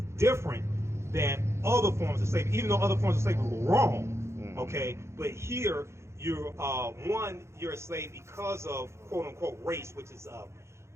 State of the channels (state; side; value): late; left; 0.13 ms